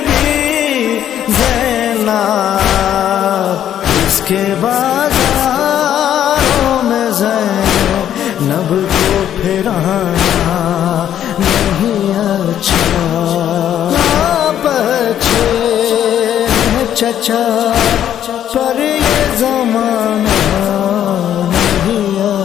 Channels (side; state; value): right; quieter; 10.5 dB